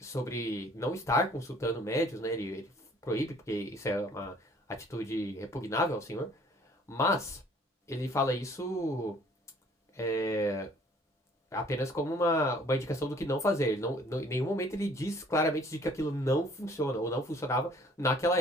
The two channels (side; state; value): both; normal; correlation 0.56